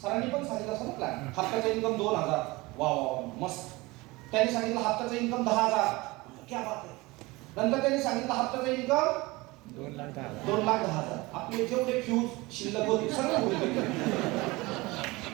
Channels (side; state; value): left; quieter; 22.4 dB